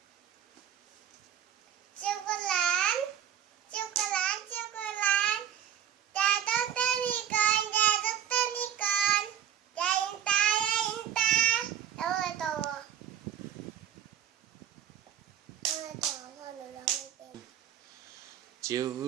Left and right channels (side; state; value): left; quieter; 9.6 dB